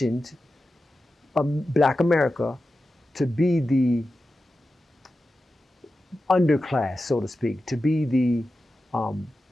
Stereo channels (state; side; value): normal; both; correlation 0.92